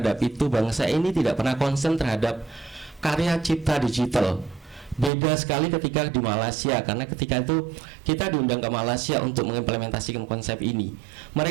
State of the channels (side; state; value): left; drops out; at 5.1 s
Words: itu. Bangsa ini tidak pernah konsen terhadap karya cipta digital. Beda sekali ketika di Malaysia, karena ketika itu kita diundang ke Malaysia untuk mengimplementasikan konsep ini.